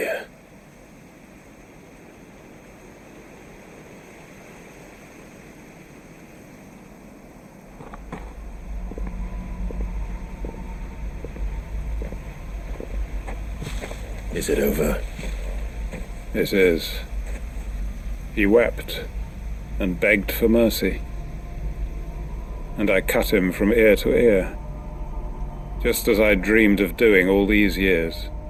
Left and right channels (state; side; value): identical; both; correlation 1.00